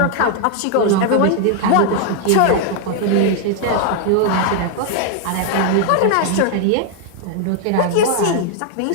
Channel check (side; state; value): both; different; correlation 0.00